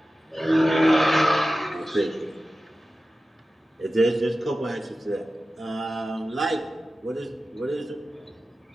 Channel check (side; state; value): both; normal; correlation 0.94